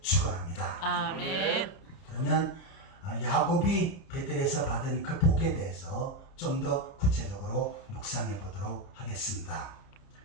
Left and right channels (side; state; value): right; late; 31 ms